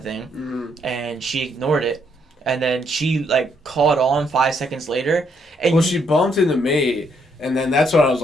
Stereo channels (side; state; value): both; normal; correlation 0.73